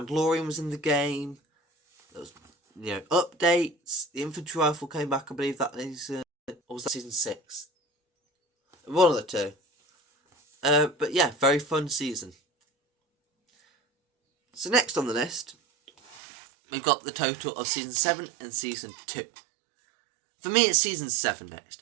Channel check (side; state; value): left; drops out; at 16.2 s